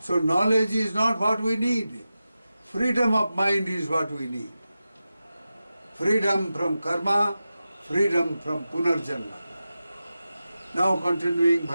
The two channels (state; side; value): inverted; both; correlation -0.93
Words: knowledge is not what we need. Freedom of mind is what we need. Freedom from karma, freedom from punarjanma. Now continuing,